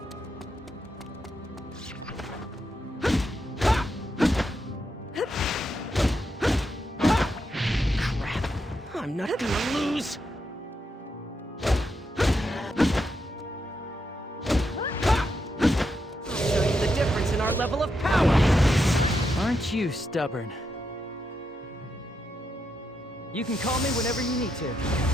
I'm not gonna lose! I'll show you the difference in our level of power! Aren't you stubborn? You can call me whenever you need to.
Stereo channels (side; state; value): both; normal; correlation 0.83